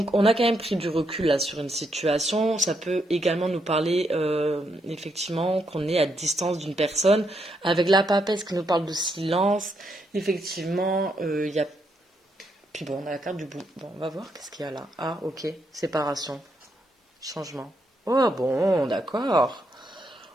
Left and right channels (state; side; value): normal; both; correlation 0.78